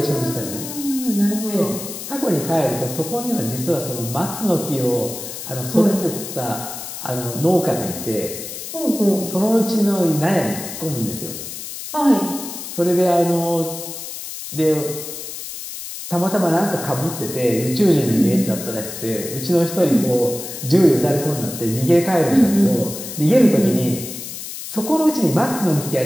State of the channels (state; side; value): noise; left; hiss, 9 dB below the sound